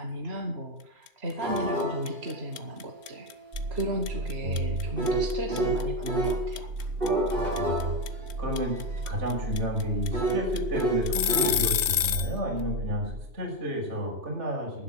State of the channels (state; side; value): late; left; 2.4 ms